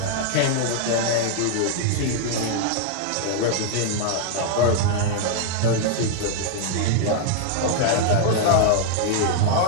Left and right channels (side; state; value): both; different; correlation 0.00